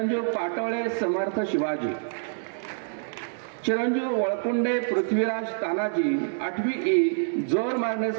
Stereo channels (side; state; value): left; silent; digital silence